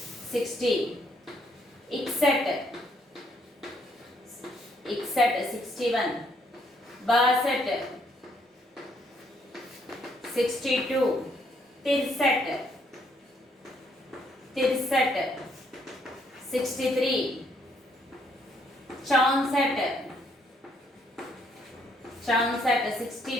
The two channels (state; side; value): normal; both; correlation 0.70